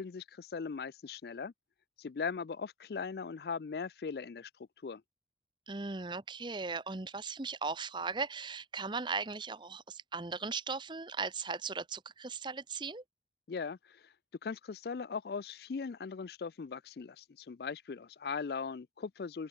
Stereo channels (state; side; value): normal; both; correlation -0.05